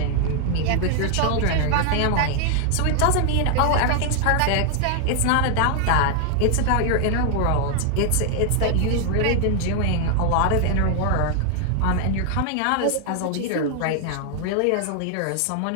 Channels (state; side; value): different; both; correlation 0.00